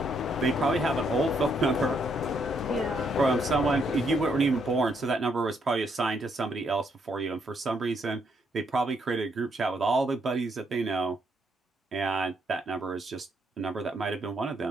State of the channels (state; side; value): normal; both; correlation 0.74